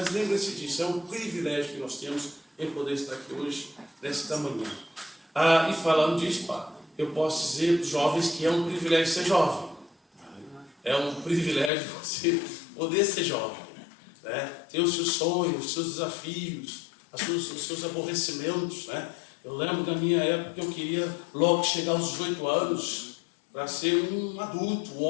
lembre-se disso, é um privilégio que nós temos em poder estar aqui hoje, nesta manhã. E falando disso, eu posso dizer para os jovens que é um privilégio ser jovem. É um privilégio você poder ser jovem, né? Ter os seus sonhos, os seus desafios, os seus aborrecimentos, né? Eu lembro da minha época que eu queria logo chegar aos 18 anos para ser um adulto, um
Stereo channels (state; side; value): drops out; right; at 11.7 s